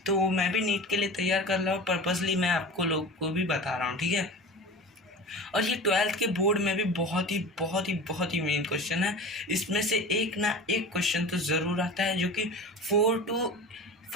तो मैं भी नीट के लिए तैयार कर रहा हूँ, पर्पसली मैं आपको लोग को भी बता रहा हूँ। ठीक है। और ये 12th के बोर्ड में भी बहुत ही मेन क्वेश्चन है। इसमें से एक ना एक क्वेश्चन तो ज़रूर आता है जो कि 3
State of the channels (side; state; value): both; normal; correlation 0.34